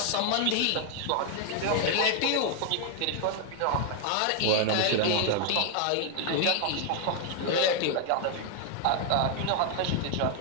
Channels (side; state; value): both; different; correlation 0.00